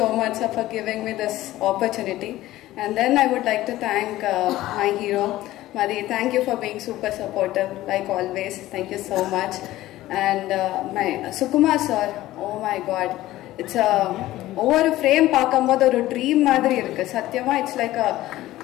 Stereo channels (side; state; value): right; quieter; 15.8 dB